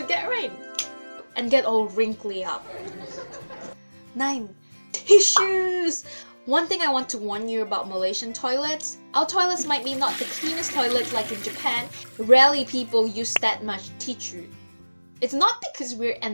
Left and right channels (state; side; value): inverted; both; correlation -1.00